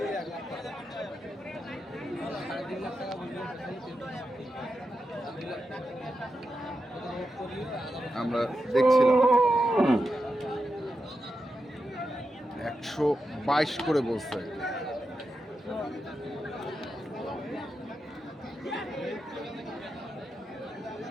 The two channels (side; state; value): both; normal; correlation 0.88